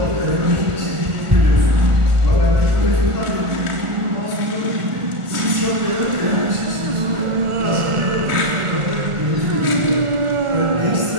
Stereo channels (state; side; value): late; left; 1.4 ms